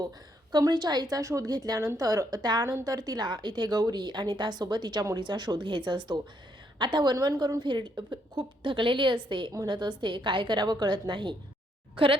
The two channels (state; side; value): normal; both; correlation 0.74